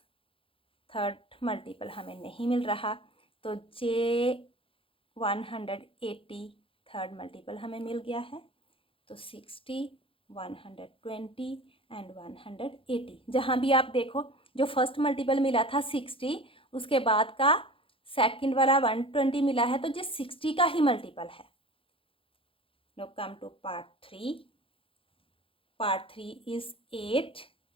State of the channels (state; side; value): late; right; 0.26 ms